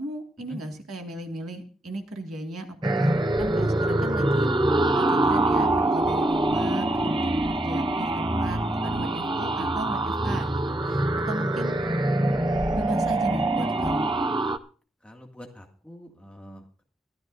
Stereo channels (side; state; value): both; normal; correlation 0.78